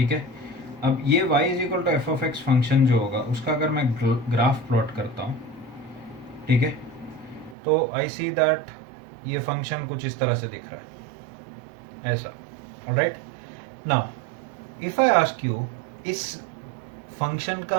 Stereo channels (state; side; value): drops out; left; at 7.6 s